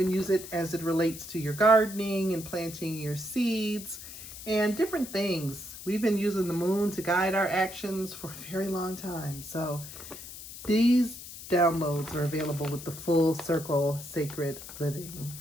use it as it relates to your gardening and planting your seeds and different things. We've been using the moon to guide our actions for a very long time. So these downloads are available with the Full Circle Sacred Living.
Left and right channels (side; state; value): left; noise; hiss, 13 dB below the sound